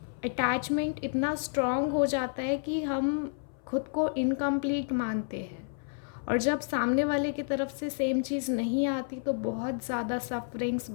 अटैचमेंट इतना स्ट्रॉन्ग हो जाता है कि हम खुद को इनकम्प्लीट मानते हैं। और जब सामने वाले की तरफ से सेम चीज़ नहीं आती तो बहुत ज़्यादा सफरिंग्स,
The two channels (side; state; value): right; silent; 58 dB below the other